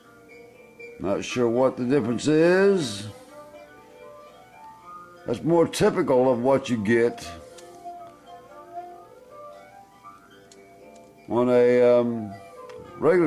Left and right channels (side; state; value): both; identical; correlation 1.00